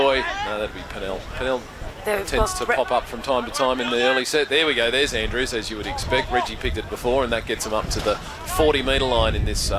No, that'd be Pennell. Pennell tends to pop up from time to time in the early set. There we go. There's Andrews, as you would expect. Reggie picked it before, and that gets him up to the 40-metre line in this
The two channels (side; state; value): both; identical; correlation 1.00